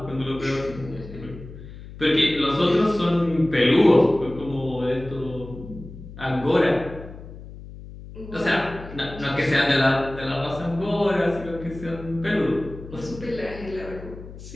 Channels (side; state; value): left; noise; hum, 15 dB below the sound